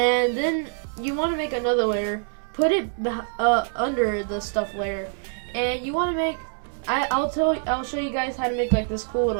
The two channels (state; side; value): silent; left; 62 dB below the other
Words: then you want to make another layer, put it under the stuff layer, and you want to make. I'll show you guys how to make like this cool